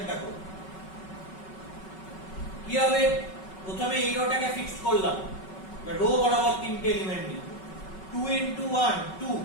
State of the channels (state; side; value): late; right; 5.3 ms